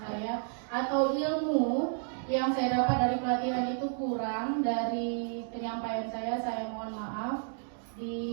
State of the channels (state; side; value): silent; left; 57 dB below the other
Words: atau ilmu yang saya dapat dari pelatihan itu kurang dari penyampaian saya mohon maaf.